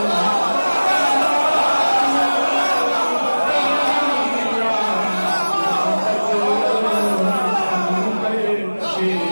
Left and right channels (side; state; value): both; inverted; correlation -1.00